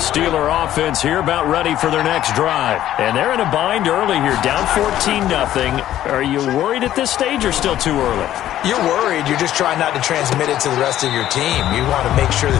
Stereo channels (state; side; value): quieter; right; 12.6 dB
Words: offense here about ready for their next drive. And they're in a bind early here, down 14-0. Are you worried at this stage or still too early? You're worried. You're just trying not to transmit it to the rest of your team. You want to make sure